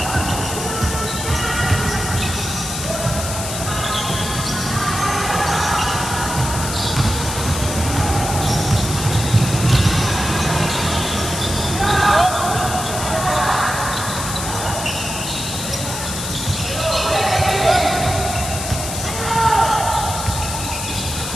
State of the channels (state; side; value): noise; left; hiss, 6 dB below the sound